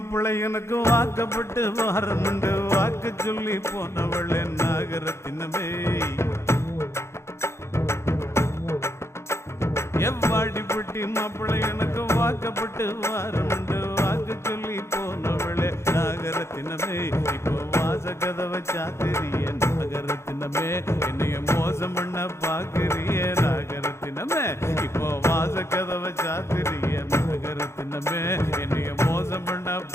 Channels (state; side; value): late; right; 0.13 ms